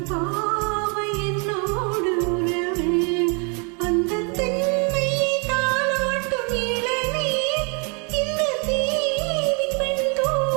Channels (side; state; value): left; quieter; 35.9 dB